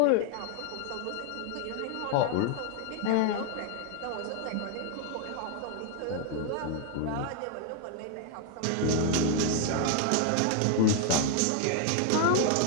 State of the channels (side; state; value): both; different; correlation 0.01